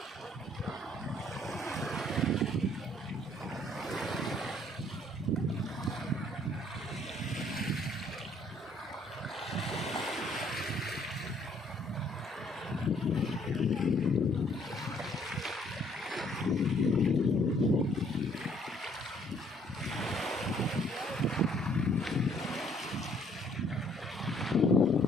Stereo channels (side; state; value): both; normal; correlation 0.63